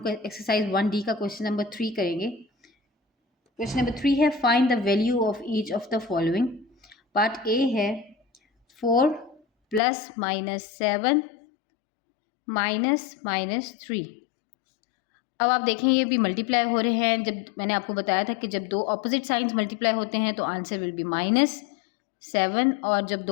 एक्सरसाइज 1D का क्वेश्चन नंबर 3 करेंगे। क्वेश्चन नंबर 3 है find the value of each of the following. Part A है 4 प्लस माइनस 7 माइनस 3। अब आप देखें ये भी मल्टीप्लाई हो रहे हैं। जब मैंने आपको बताया था कि जब दो ऑपोजिट साइंस मल्टीप्लाई होते हैं तो आंसर विल बी -7, और जब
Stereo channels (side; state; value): right; drops out; at 9.8 s